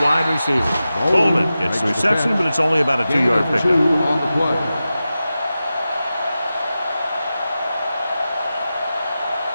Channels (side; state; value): both; inverted; correlation -0.93